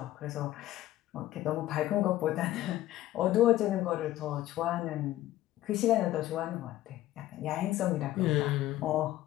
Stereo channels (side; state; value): right; quieter; 14.6 dB